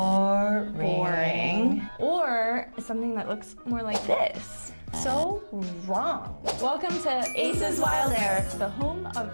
Or something that looks more like this. So wrong. Welcome to Ace's Wild Air, the home of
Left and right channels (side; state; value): both; inverted; correlation -1.00